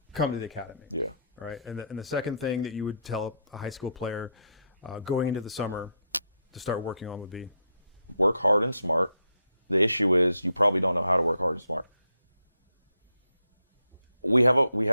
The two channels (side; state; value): both; inverted; correlation -0.76